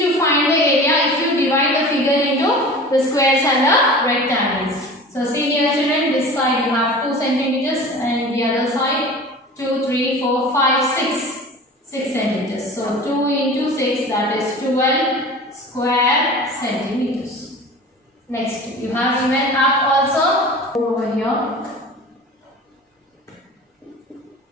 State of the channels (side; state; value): both; normal; correlation 0.38